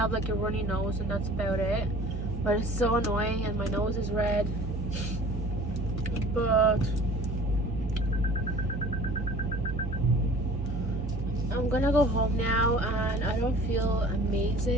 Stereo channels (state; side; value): normal; both; correlation 0.47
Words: like a runny nose and that's about it. But it's so annoying and my nose is red. But I'm gonna go home now and I don't feel